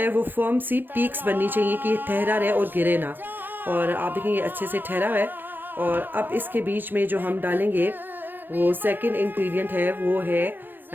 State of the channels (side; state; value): left; late; 0.093 ms